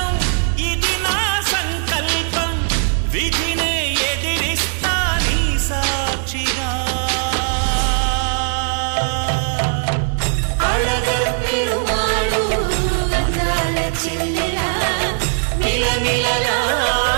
ఇది నా సంకల్పం, విధినే ఎదిరిస్తా నీ సాక్షిగా. అళగర్ పెరుమాళు అందాల చెల్లెలా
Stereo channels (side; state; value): left; silent; digital silence